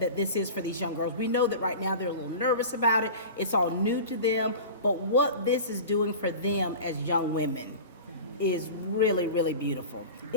this is for these young girls. We know that right now they're a little nervous about it. It's all new to them. But what this is doing for them as young women is really, really beautiful.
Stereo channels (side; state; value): both; inverted; correlation -0.34